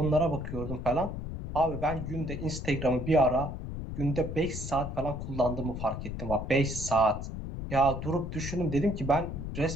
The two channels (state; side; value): noise; left; rumble, 6 dB below the sound